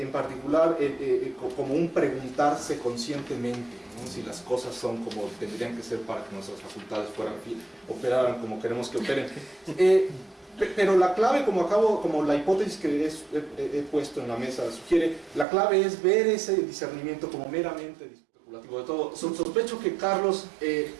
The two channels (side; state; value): left; drops out; at 15.5 s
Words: como un preguntarse conscientemente, ¿no? Si las cosas son como tendrían que ser para que nuestras facultades operaran como queremos que operen. Pero la clave, como la hipótesis que he puesto en la mesa sugiere, la clave es ver ese discernimiento como meramente especulativo de todo. Sospecho que Carlos